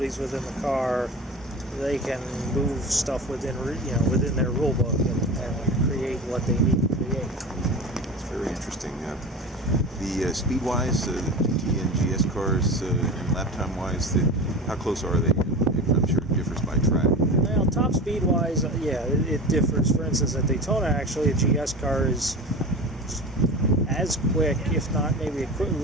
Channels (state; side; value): normal; both; correlation 0.31